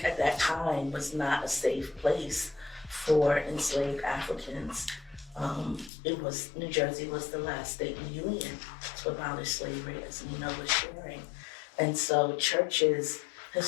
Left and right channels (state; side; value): drops out; right; at 5.9 s